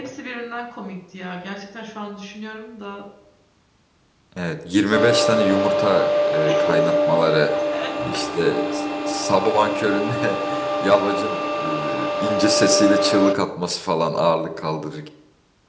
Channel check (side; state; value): both; identical; correlation 1.00